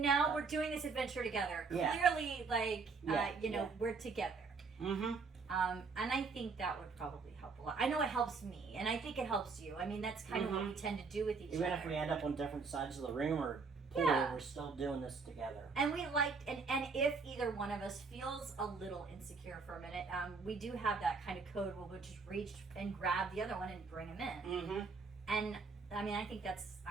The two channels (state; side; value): quieter; left; 4.7 dB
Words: now we're doing this adventure together. Yeah. Clearly, like, we're together. Mm-hmm. And I think that would probably help a lot. I know it helps me, and I think it helps you. I mean, that's kind of what we tend to do with each other. Even if we end up on different sides of the room or pool, we're still doing this together. And we liked, and if either one of us feels a little insecure for a minute, we do have that kind of code where we'll just reach and grab the other one and bring him in. Mm-hmm. And I mean, I think